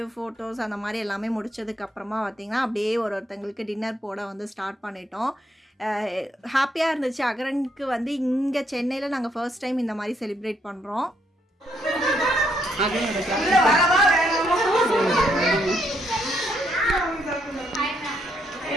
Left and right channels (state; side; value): normal; both; correlation 0.74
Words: ஃபோட்டோஸ் அந்த மாதிரி எல்லாமே முடிச்சதுக்கப்புறமா பார்த்திங்கன்னா அப்படியே ஒருத்தங்களுக்கு டின்னர் போட வந்து ஸ்டார்ட் பண்ணிட்டோம். ஹாப்பியாக இருந்துச்சு. அகரனுக்கு வந்து இங்கே சென்னையில் நாங்கள் ஃபர்ஸ்ட் டைம் இந்த மாதிரி செலிப்ரேட் பண்ணுறோம்.